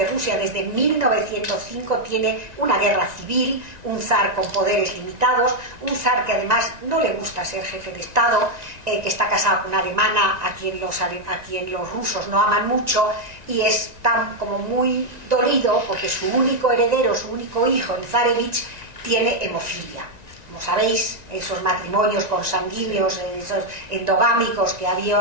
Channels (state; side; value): late; left; 1.9 ms